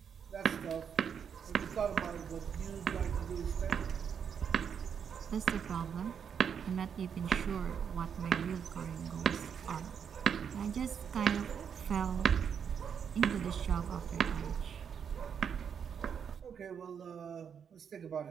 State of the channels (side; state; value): left; quieter; 7.4 dB